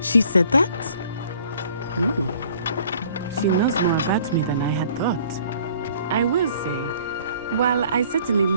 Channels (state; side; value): inverted; both; correlation -0.55